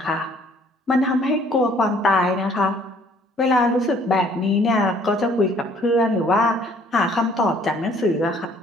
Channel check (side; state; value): both; normal; correlation 0.59